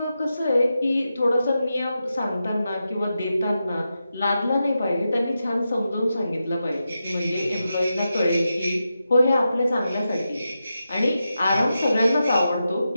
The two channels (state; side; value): inverted; both; correlation -0.89